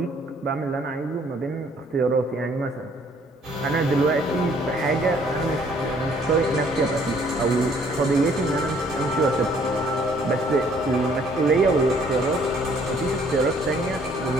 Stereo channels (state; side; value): normal; both; correlation 0.62